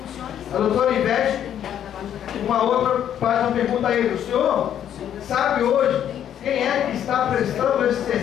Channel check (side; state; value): right; quieter; 10.0 dB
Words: A doutora Ivete, uma outra, faz uma pergunta a ele, o senhor sabe hoje quem é que está prestando esse